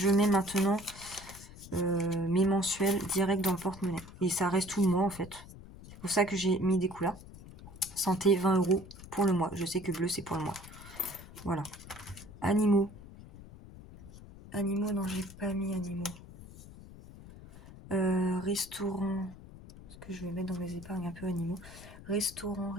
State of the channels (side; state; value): left; noise; rumble, 17 dB below the sound